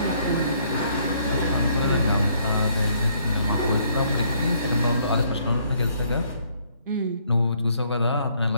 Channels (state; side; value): inverted; both; correlation -0.66